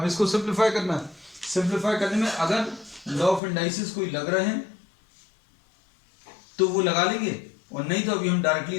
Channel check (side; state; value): right; drops out; at 3.4 s